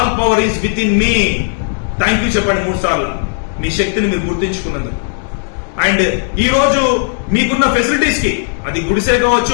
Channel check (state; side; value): silent; right; 68 dB below the other